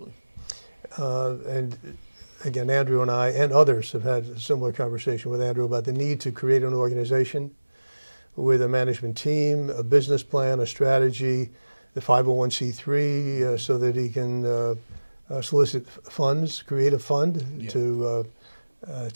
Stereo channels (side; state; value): both; inverted; correlation -1.00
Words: And again, Andrew and I and others have had a similar conversation with Andrew about the need to create an organization with a management team, a business plan, a strategy, the 501c3, so that he can solicit funds, create a fund to